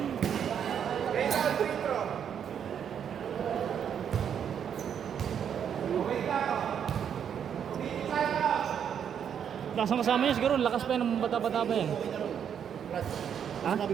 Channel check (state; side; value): quieter; left; 8.3 dB